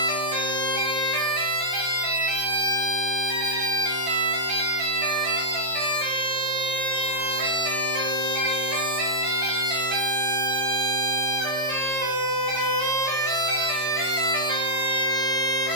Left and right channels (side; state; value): left; late; 15 ms